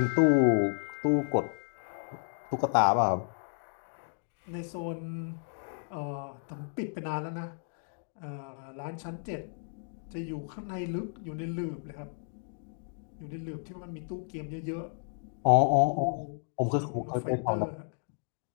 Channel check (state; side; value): silent; right; digital silence